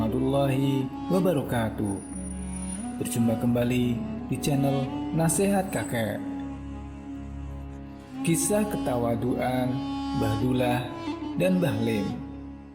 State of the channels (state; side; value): identical; both; correlation 1.00